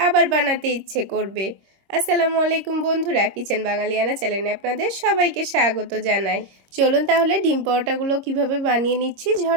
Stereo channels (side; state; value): left; late; 26 ms